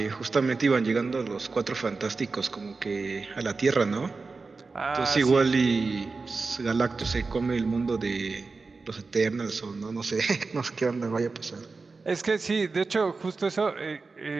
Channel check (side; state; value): left; quieter; 4.1 dB